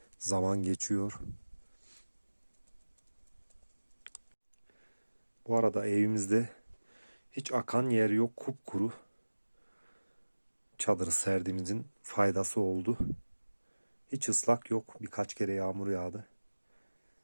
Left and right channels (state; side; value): inverted; both; correlation -1.00